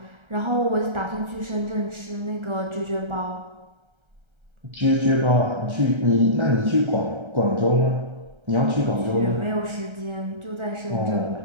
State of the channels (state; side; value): late; left; 1.3 ms